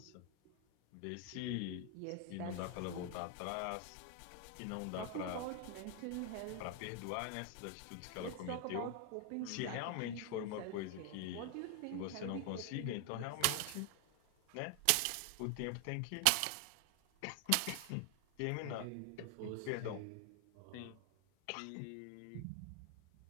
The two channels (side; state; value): both; different; correlation 0.00